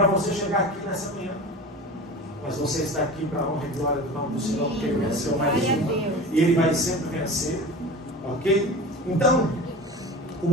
você chegar aqui nessa manhã. Mas você está aqui para a honra e glória do nome do Senhor, porque Ele venceu mais uma. E Ele vai sempre vencer. Ok? Então, o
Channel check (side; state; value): both; normal; correlation 0.33